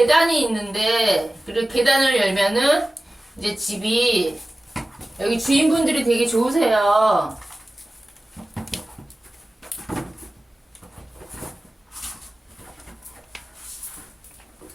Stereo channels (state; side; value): normal; both; correlation 0.96